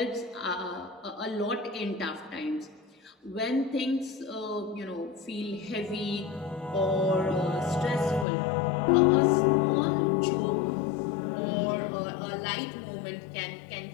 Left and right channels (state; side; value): drops out; right; at 8.2 s